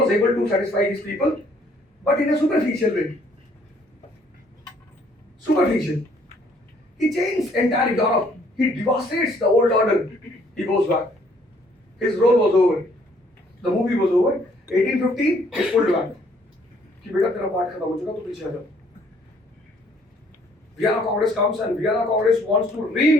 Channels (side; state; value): both; normal; correlation 0.63